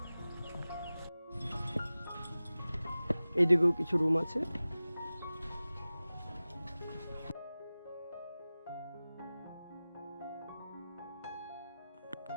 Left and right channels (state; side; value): inverted; both; correlation -0.97